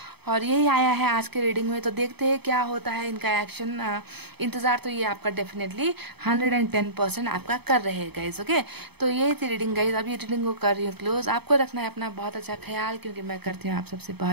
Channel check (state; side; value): late; left; 0.97 ms